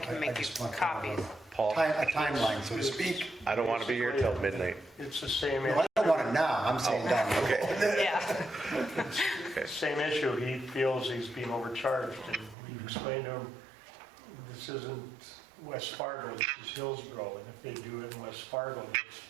make you just want copies. Paul? A timeline, so to speak. I don't want to be here till midnight. It's the same, Well, I don't want it now, I'm saying down the road. Yeah. same issue. He feels he's being overcharged, and we've explained to him, this isn't West Fargo, this is Hillsboro, and if they do it in West Fargo,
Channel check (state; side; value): drops out; left; at 12.6 s